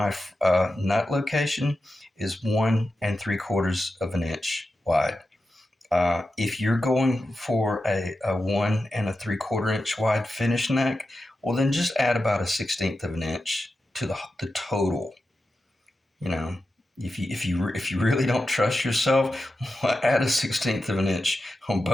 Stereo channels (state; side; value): normal; both; correlation 0.91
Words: nut location is 1 3/4 of an inch wide. If you're going for a 1 3/4 inch wide finish neck, well, then just add about a 16th of an inch to the total. You know, if you really don't trust yourself, add a 16th of an inch on